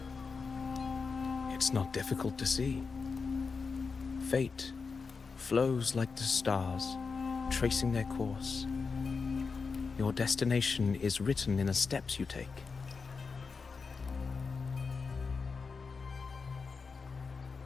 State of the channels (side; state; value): right; quieter; 4.9 dB